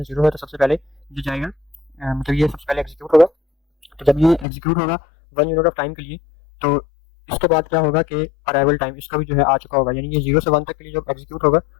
0 है, तो सबसे पहले ये जाएगा मतलब ये सबसे पहले एग्जीक्यूट होगा। तो जब ये एग्जीक्यूट होगा 1 यूनिट ऑफ टाइम के लिए, तो इसके बाद क्या होगा कि अराइवल टाइम इसका भी जो है आ चुका होगा, यानी ये 0 से 1 तक के लिए जब एग्जीक्यूट होगा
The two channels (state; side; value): drops out; right; at 4.5 s